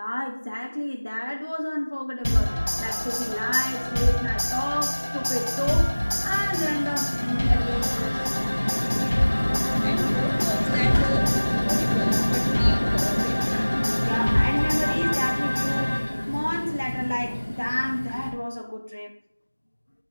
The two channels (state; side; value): inverted; both; correlation -1.00